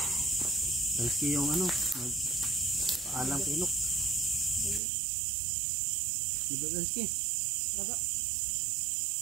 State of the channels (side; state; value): left; drops out; at 4.8 s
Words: Dalski yung ano, paalam kay Inok. Diba Dalski? Raga.